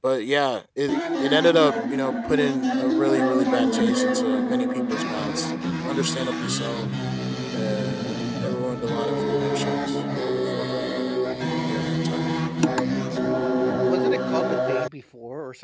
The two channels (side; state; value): both; identical; correlation 1.00